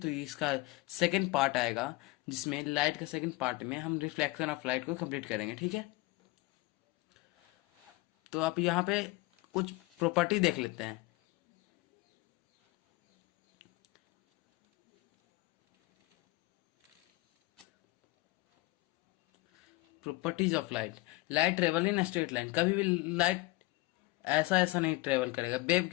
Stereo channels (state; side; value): quieter; right; 21.1 dB